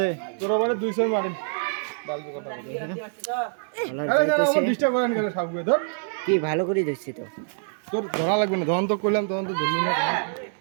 তোর আবার 200 মারিন কি ভালো করে দেখছি তো তোর ধরা লাগবে না তখন তো করলাম তখন তো ধরলি না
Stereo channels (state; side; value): silent; left; digital silence